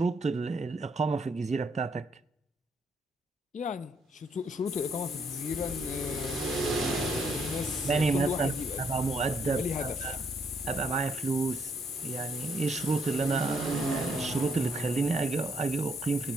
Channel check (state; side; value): normal; both; correlation 0.71